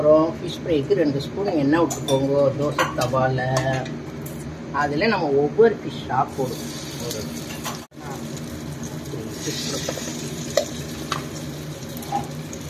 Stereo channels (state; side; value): identical; both; correlation 1.00